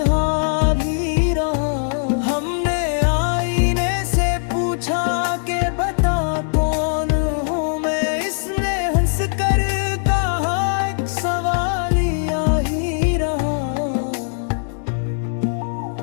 भी रहा। हमने आईने से पूछा के बता कौन हूँ मैं, इसने हंस कर कहा एक सवाल ही रहा।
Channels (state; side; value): silent; right; 66 dB below the other